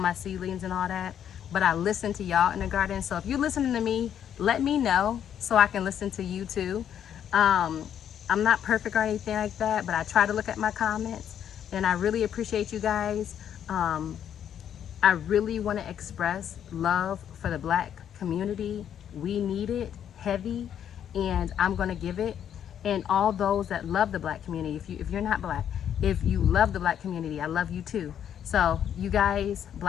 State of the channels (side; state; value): right; quieter; 9.4 dB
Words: seedlings and all that, but I listen to y'all in the garden. So if you're listening to me, let me know so I can listen to you too. I'm not perfect or anything like that, but I try to look at my comments, and I really appreciate you guys. I really want to express love for the Black community. We need it heavy, and I'm going to give it. And all those that love the Black community, if you're not Black, if you love the Black community, I love you too. So you guys,